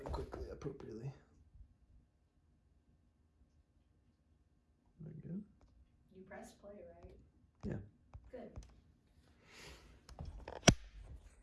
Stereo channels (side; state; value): both; identical; correlation 1.00